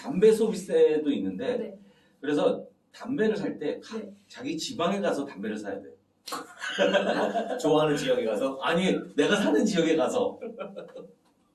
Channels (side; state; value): both; identical; correlation 1.00